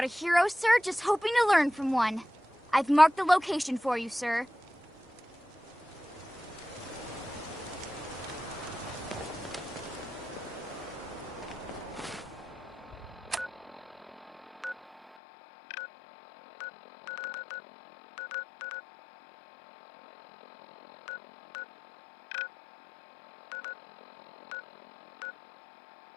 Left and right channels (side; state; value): right; drops out; at 15.2 s